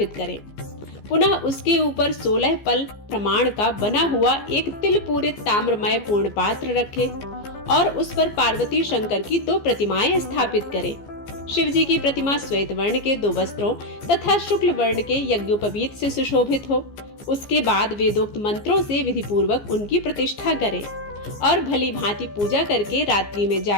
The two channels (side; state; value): right; late; 15 ms